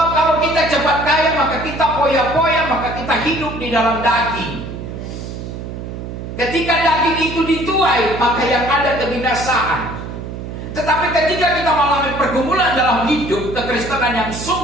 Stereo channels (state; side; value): noise; right; hum, 8 dB below the sound